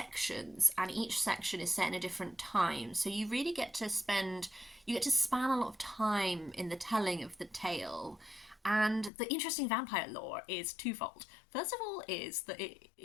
and each section is set in a different time, so you really get to span a lot of time in the telling of the tale. And the interesting vampire lore is twofold. First of all is that it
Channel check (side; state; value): right; drops out; at 9.1 s